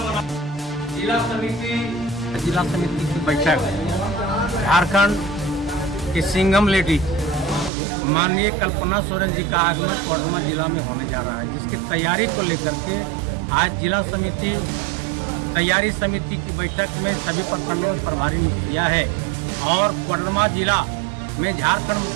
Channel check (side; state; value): left; drops out; at 7.7 s